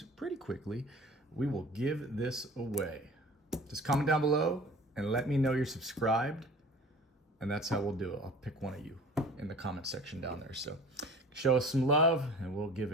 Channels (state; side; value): normal; both; correlation 0.43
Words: pretty quickly, we will give this away. Just comment down below and let me know you're subscribed. And that's how we'll do it. I'll pick one of you in the comment section down there. So show us some love and we'll give